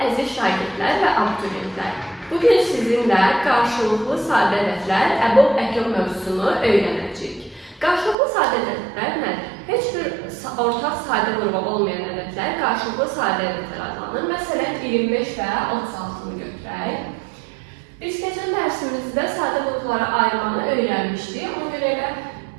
əziz şagirdlər və abituriyentlər. Bugün sizinlə qarşılıqlı sadə ədədlər, əbob əkyob mövzusunu öyrənəcəyik. Qarşılıqlı sadə ədədlər nədir? Heç bir ortaq sadə qrupu olmayan ədədlər qarşılıqlı sadə ədədlər adlanır. Məsələn, 25 və 36-nı götürək. Biz keçən dərsimizdə sadə qruplara ayırmanı öyrənmişdik. Ona görə elə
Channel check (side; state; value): left; drops out; at 8.2 s